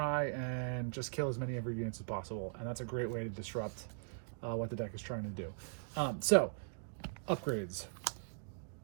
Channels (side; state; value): left; silent; digital silence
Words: and just kill as many of your units as possible. And that's a great way to disrupt what the deck is trying to do. So, upgrades.